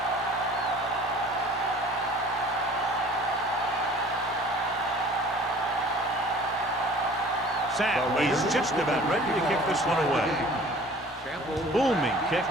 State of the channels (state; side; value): normal; both; correlation 0.48